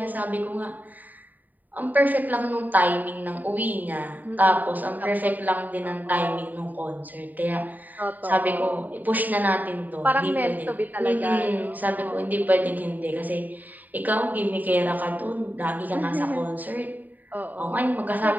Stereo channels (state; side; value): late; left; 0.085 ms